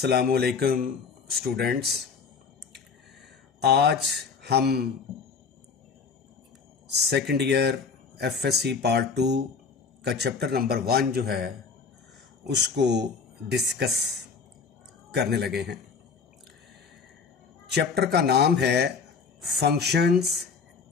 स्टूडेंट्स। आज हम सेकंड ईयर एफएससी पार्ट 2 का चैप्टर नंबर 1 जो है उसको डिस्कस करने लगे हैं। चैप्टर का नाम है फंक्शंस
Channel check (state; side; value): quieter; right; 5.4 dB